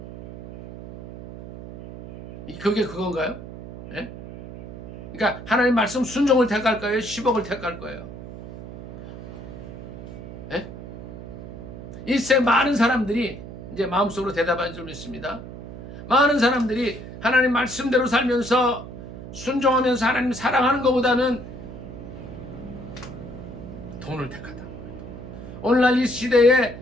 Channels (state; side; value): noise; right; hum, 12 dB below the sound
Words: 그게 그건가요? 예? 그러니까 하나님 말씀 순종을 택할 거예요? 10억을 택할 거예요? 예? 이 세상 많은 사람들이 이제 마음속으로 대답한 줄 믿습니다. 많은 사람들이 하나님 말씀대로 살면서 순종하면서 하나님 사랑하는 것보다는 돈을 택하다. 오늘날 이 시대에